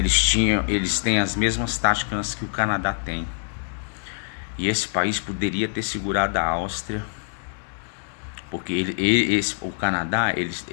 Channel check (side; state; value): right; silent; 62 dB below the other